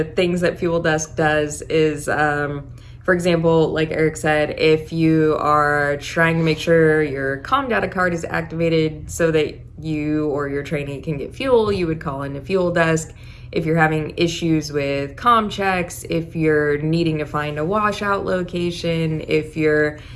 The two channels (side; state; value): both; identical; correlation 1.00